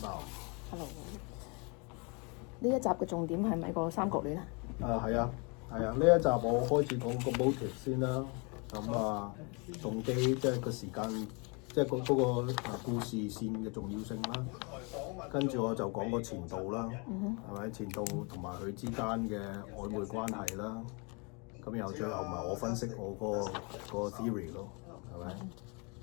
Hello。呢一集嘅重點係咪個三角戀啊？係啊，呢一集我開始講個 motive 先啦。咁動機即係個時間，即係嗰個故事線嘅重要性啦。跟住我就講個前度啦，係咪？前度同埋佢之間嘅曖昧關係啦。咁然後最後咪我分析我個 theory 咯，係咪？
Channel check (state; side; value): quieter; right; 32.1 dB